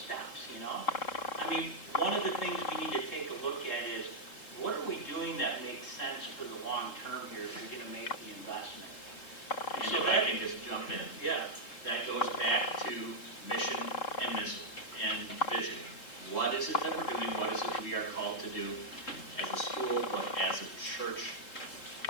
steps, you know? I mean, one of the things we need to take a look at is, what are we doing that makes sense for the long term here if we're going to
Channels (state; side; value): late; right; 3.7 ms